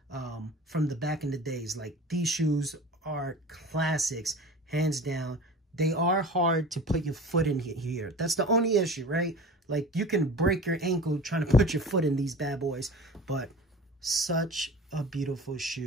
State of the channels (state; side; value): normal; both; correlation 0.38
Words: from the back in the days. Like, these shoes are classics, hands down. They are hard to put your foot in here. That's the only issue, right? Like, you can break your ankle trying to put your foot in these bad boys, but such a beautiful